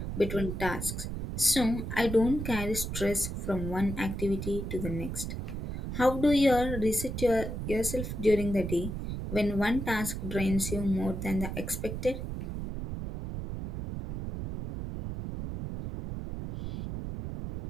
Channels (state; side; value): noise; right; rumble, 5 dB below the sound